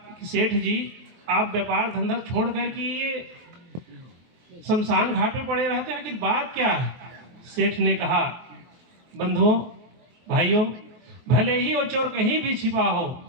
कि सेठ जी आप व्यापार धंधा छोड़ कर के ये शमशान घाट पे पड़े रहते हैं, आखिर बात क्या है? सेठ ने कहा, बंधुओं भाइयों, भले ही वो चोर कहीं भी छिपा हो,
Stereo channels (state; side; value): late; left; 23 ms